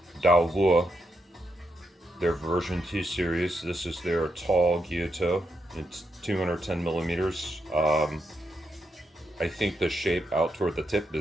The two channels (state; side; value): normal; both; correlation 0.82